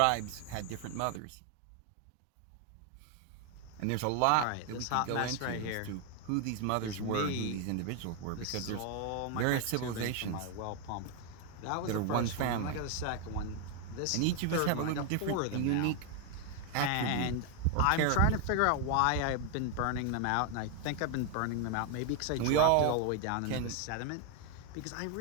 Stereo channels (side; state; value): both; different; correlation 0.01